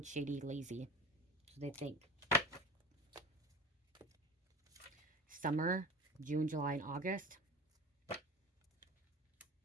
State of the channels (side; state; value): both; normal; correlation 0.36